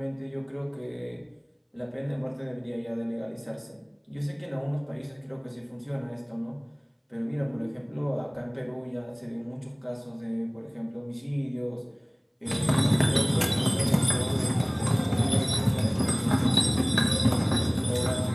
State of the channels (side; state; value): both; identical; correlation 1.00